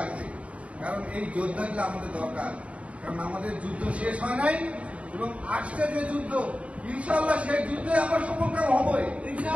কারণ এই যোদ্ধাগুলো আমাদের দরকার, কারণ আমাদের যুদ্ধ শেষ হয় নাই এবং আসছে যে যুদ্ধ, ইনশাআল্লাহ সেই যুদ্ধে আমরা সফলকাম হবই।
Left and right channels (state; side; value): late; left; 0.064 ms